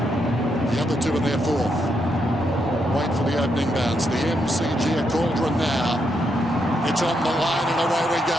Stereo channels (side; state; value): both; normal; correlation 0.80